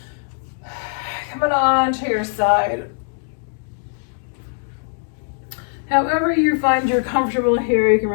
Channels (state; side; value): silent; right; digital silence